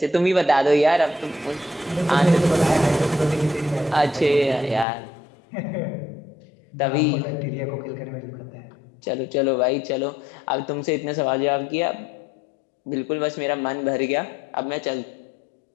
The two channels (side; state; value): right; drops out; at 4.9 s